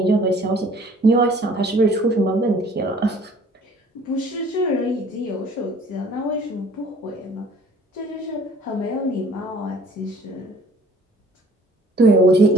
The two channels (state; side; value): normal; both; correlation 0.54